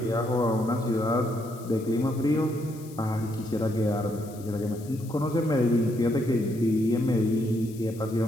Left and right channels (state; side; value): noise; left; hiss, 21 dB below the sound